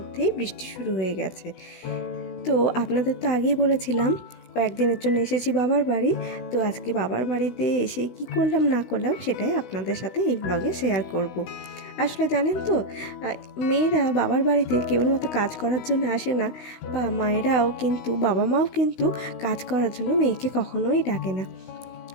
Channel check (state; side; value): late; right; 16 ms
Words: বৃষ্টি শুরু হয়ে গেছে। তো আপনাদের তো আগেই বলেছিলাম কয়েকদিনের জন্য এসেছি বাবার বাড়ি। তো আজকে বাবার বাড়িতে এসে কি করলাম না করলাম সেটাই আপনাদের সাথে এই ব্লগে শেয়ার করব। আসলে জানেন তো, মেয়েরা বাবার বাড়িতে কেবলমাত্র কাজ করার জন্য আসে না, বা মায়েরাও কিন্তু বাবা মাও কিন্তু কাজ করার জন্য মেয়েকে কখনোই ডাকে না।